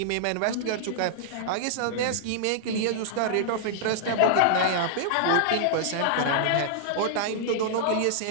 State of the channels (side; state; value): both; different; correlation -0.01